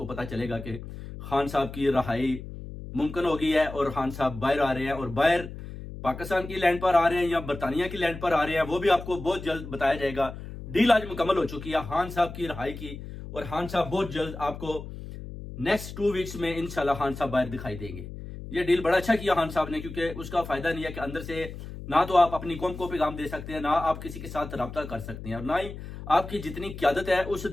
پتہ چلے گا کہ خان صاحب کی رہائی ممکن ہو گئی ہے اور خان صاحب باہر آ رہے ہیں، اور باہر پاکستان کی لینڈ پر آ رہے ہیں یا برطانیہ کی لینڈ پر آ رہے ہیں، وہ بھی آپ کو بہت جلد بتایا جائے گا۔ ڈیل آج مکمل ہو چکی ہے خان صاحب کی رہائی کی، اور خان صاحب بہت جلد آپ کو نیکسٹ 2 ویکس میں انشاءاللہ خان صاحب باہر دکھائی دیں گے۔ یہ ڈیل بڑا اچھا کیا خان صاحب نے، کیونکہ اس کا فائدہ نہیں ہے کہ اندر سے نہ تو آپ اپنی قوم کو پیغام دے سکتے ہیں، نہ آپ کسی کے ساتھ رابطہ کر سکتے ہیں، اور نہ ہی آپ کی جتنی قیادت ہے اس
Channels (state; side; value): noise; left; hum, 11 dB below the sound